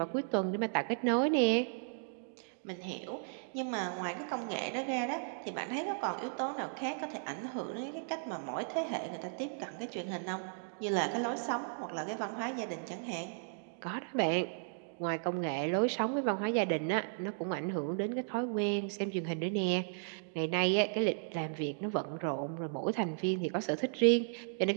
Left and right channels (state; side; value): silent; left; digital silence